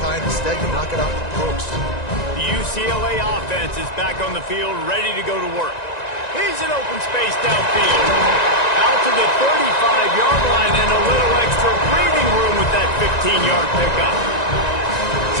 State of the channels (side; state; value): right; late; 1.9 ms